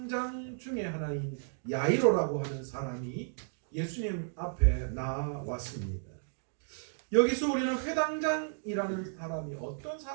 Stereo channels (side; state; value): left; silent; digital silence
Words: 중에 하나인 야이로라고 하는 사람이 예수님 앞에 나왔습니다. 여기서 우리는 회당장이라는 사람이 어떤